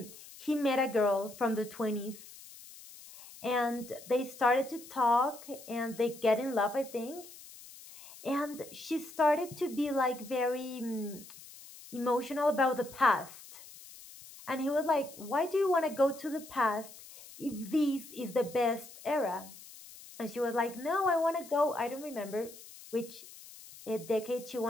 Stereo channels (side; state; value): left; noise; hiss, 18 dB below the sound